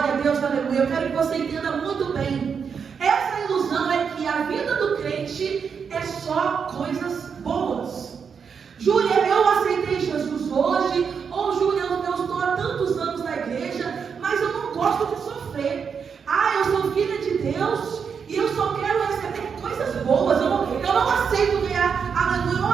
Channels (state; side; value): quieter; left; 6.4 dB